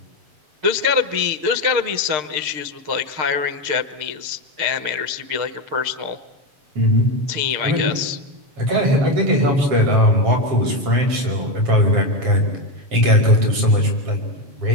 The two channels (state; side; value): late; left; 6.6 ms